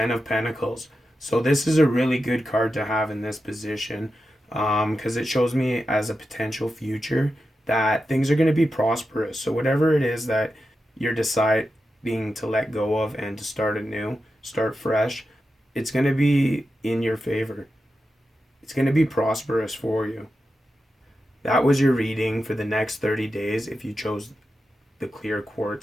of Pentacles. So this is a really good card to have in this position, because it shows me as a potential future that things are going to be prosperous. So whatever it is that you're deciding to let go of and to start anew, start fresh, it's going to be in your favor. It's going to be prosperous for you. That was your reading for the next 30 days if you chose the clear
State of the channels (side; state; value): both; normal; correlation 0.90